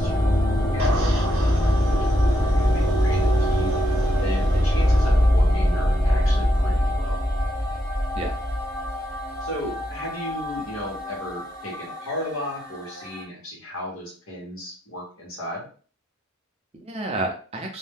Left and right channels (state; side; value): normal; both; correlation 0.80